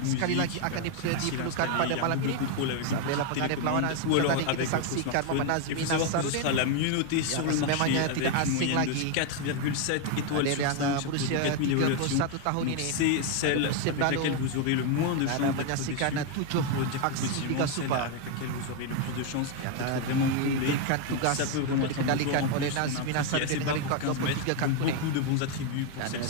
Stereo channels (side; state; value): both; different; correlation 0.01